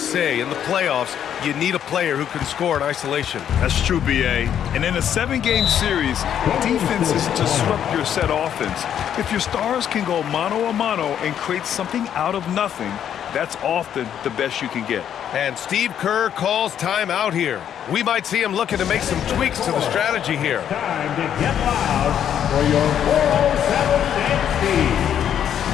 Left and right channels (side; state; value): right; quieter; 9.5 dB